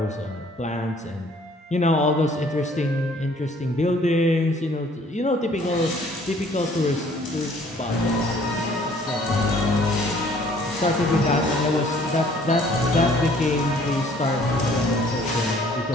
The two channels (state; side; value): normal; both; correlation 0.57